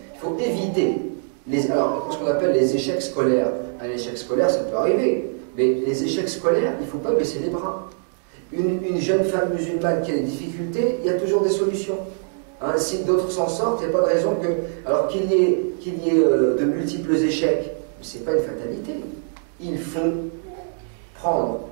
Il faut éviter ce qu'on appelle les échecs scolaires. Un échec scolaire, ça peut arriver, mais les échecs scolaires, il ne faut pas baisser les bras. Une jeune femme musulmane qui a des difficultés, il y a toujours des solutions. Hein, si d'autres s'en sortent, il n'y a pas de raison que, alors qu'il y ait de multiples échecs, ce n'est pas une fatalité. Il faut prendre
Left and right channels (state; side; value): silent; left; 64 dB below the other